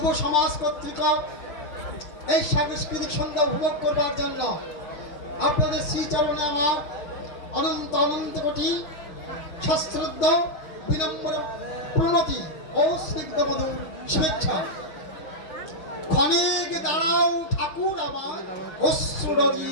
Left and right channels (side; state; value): right; late; 6.4 ms